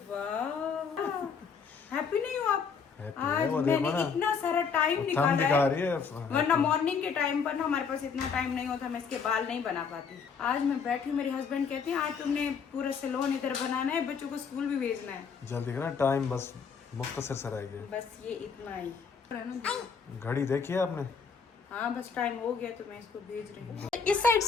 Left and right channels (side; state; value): right; quieter; 5.9 dB